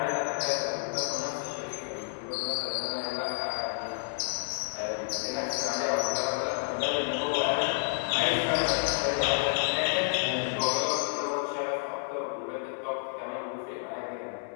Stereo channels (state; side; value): silent; right; digital silence